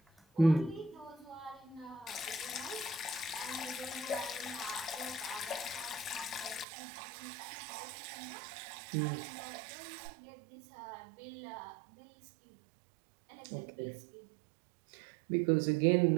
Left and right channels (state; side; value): drops out; left; at 6.7 s